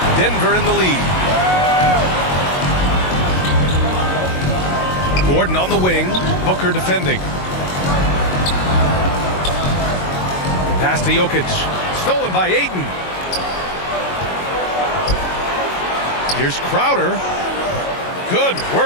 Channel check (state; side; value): late; right; 22 ms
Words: Denver in the lead. Gordon on the wing. Booker defending. Pass to Jokic. Stolen by Ayton. Here's Crowder. Good